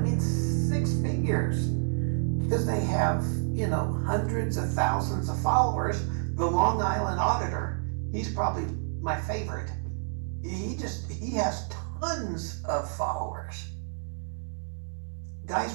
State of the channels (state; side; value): silent; left; 59 dB below the other